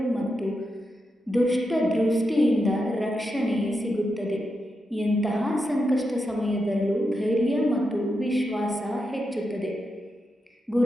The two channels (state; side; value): normal; both; correlation 0.86